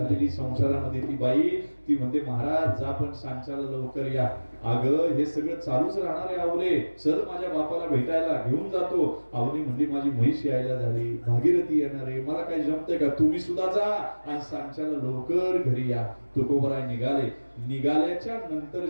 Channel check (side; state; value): both; inverted; correlation -1.00